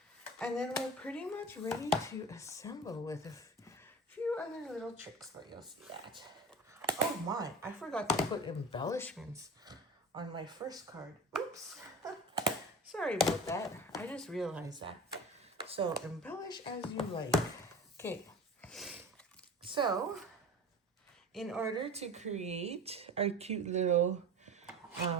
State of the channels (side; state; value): both; normal; correlation 0.35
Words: And then we're pretty much ready to assemble with a few other little tricks, but you'll see that. Oh my, I forgot to put embellishments on my first card. Oops. Sorry about that. I just realized that. So embellish as you like. Okay. So in order to create our cute little